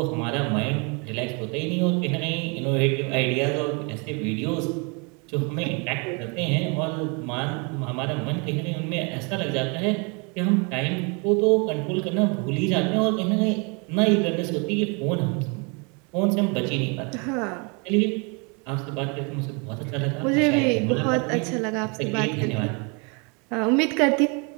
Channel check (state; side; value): quieter; left; 32.7 dB